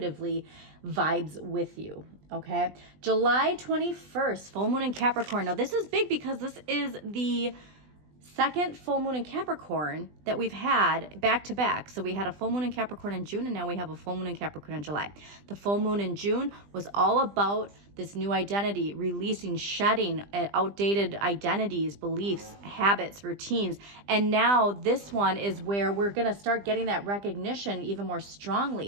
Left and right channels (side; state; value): left; late; 20 ms